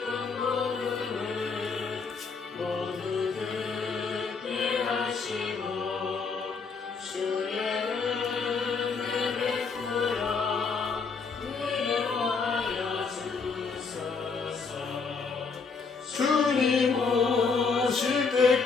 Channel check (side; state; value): right; quieter; 5.0 dB